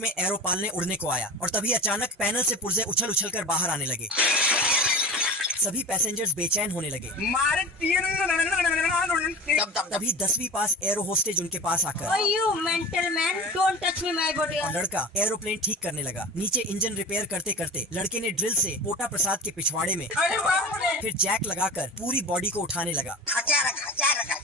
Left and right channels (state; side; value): normal; both; correlation 0.33